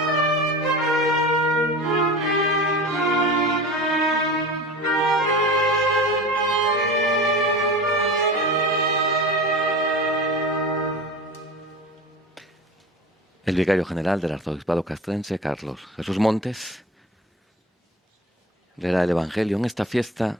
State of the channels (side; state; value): both; normal; correlation 0.33